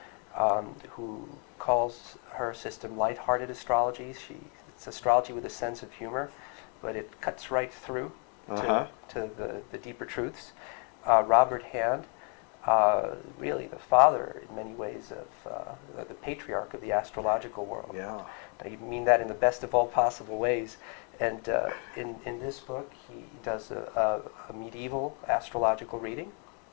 who calls her system lighthearted astrology. It's astrology with a sense of humor, but it cuts right through to the deeper truths. Robert Hand, really the father in many ways of the patriarch of the astrological world. Yeah. I mean that in the best of all possible ways. And in this book, he does a medieval astrological reading.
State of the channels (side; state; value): right; quieter; 37.8 dB